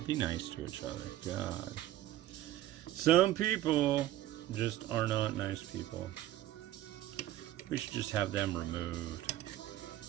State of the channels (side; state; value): left; quieter; 14.3 dB